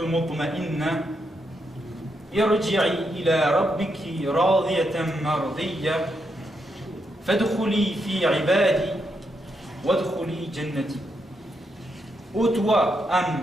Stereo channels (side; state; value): both; normal; correlation 0.81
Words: mutma'inna irji'i ila rabbiki radiyatan mardiyya fadkhuli fi ibadi wadkhuli jannati. Ô toi,